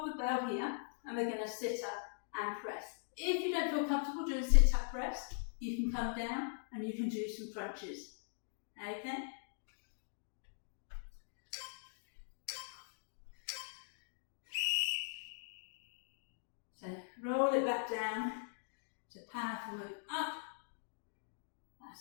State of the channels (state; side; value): silent; right; digital silence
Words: the bell here and we're going to sit up and press. If you don't feel comfortable doing sit-up press, you can come down and you can do some crunches. Okay? So roll it back down. It's a powerful move up.